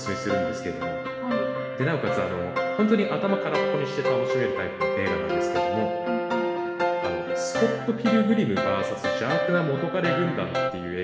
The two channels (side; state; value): both; identical; correlation 1.00